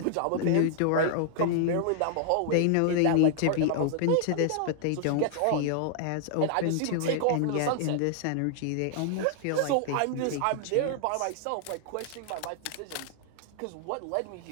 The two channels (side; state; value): both; different; correlation 0.00